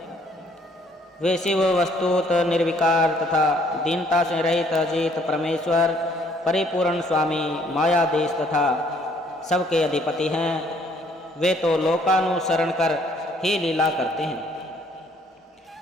वे शिव वस्तुत निर्विकार तथा दीनता से रहित अजित परमेश्वर परिपूर्ण स्वामी मायाधीश तथा सबके अधिपति हैं। वे तो लोकानुसरण कर ही लीला करते हैं,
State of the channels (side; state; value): both; normal; correlation 0.63